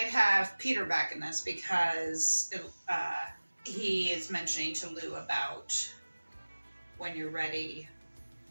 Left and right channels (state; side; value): inverted; both; correlation -1.00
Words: have Peter back in this because he is mentioning to Lou about when you're ready,